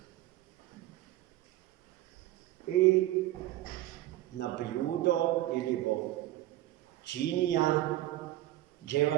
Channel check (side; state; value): left; quieter; 15.5 dB